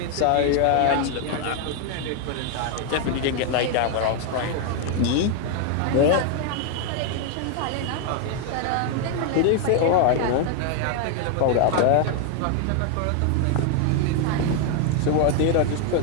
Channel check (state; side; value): different; both; correlation 0.01